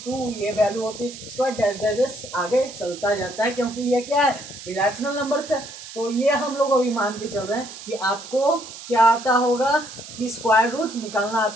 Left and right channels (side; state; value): right; noise; hiss, 14 dB below the sound